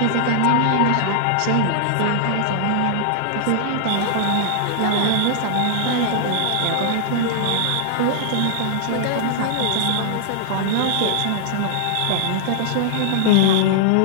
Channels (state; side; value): different; both; correlation -0.01